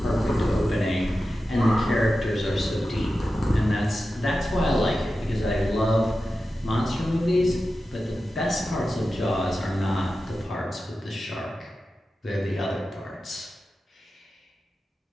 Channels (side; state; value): both; normal; correlation 0.92